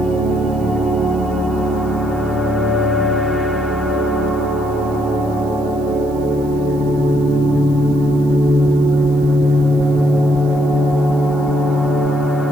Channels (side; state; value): right; noise; hiss, 26 dB below the sound